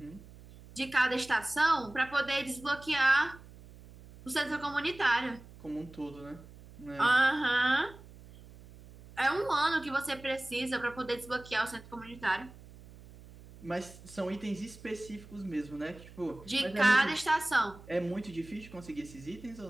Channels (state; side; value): noise; right; hum, 19 dB below the sound